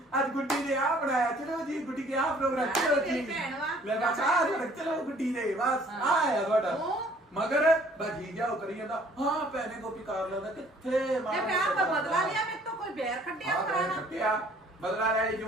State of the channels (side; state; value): both; normal; correlation 0.57